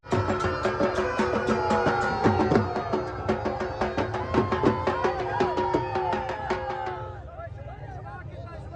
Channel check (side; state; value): both; identical; correlation 1.00